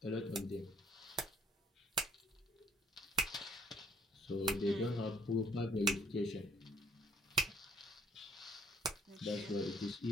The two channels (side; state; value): both; normal; correlation 0.60